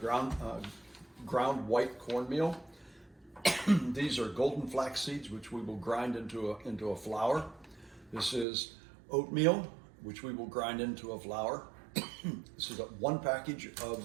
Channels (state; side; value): drops out; left; at 8.5 s